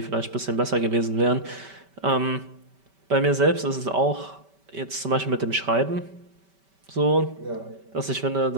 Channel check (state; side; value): late; left; 5.2 ms